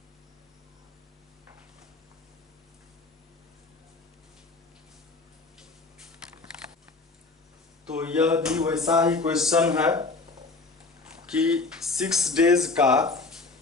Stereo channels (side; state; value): right; quieter; 3.7 dB